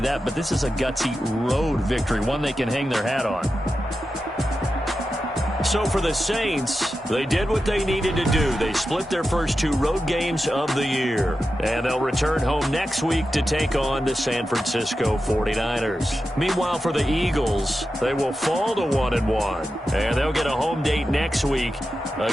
that, but this is a gutsy road victory, one they can hang their hat on. So for the Saints, they did what they needed to do. They split their first 2 road games of the year. And they'll return home next week to take on the San Francisco 49ers. Meanwhile, for the Eagles, they will fall to 1-1. And they'll get a home date next week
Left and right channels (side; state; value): both; normal; correlation 0.91